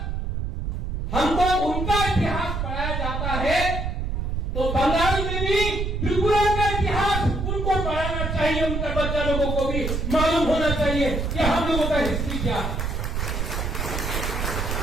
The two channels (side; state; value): right; noise; rumble, 2 dB below the sound